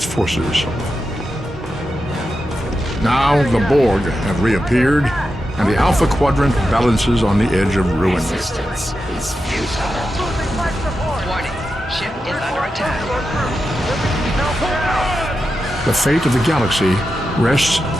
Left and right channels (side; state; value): both; normal; correlation 0.89